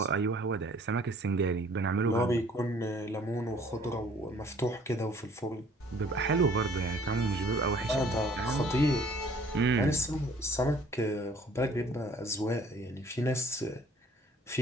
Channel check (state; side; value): normal; both; correlation 0.56